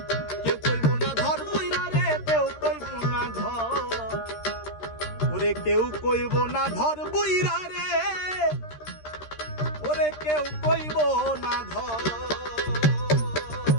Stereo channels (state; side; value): late; right; 13 ms